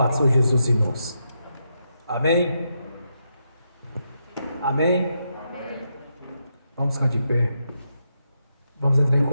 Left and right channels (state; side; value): inverted; both; correlation -0.83